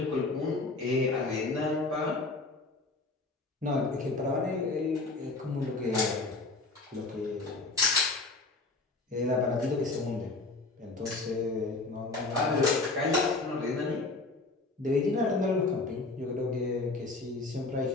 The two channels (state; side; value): quieter; right; 3.4 dB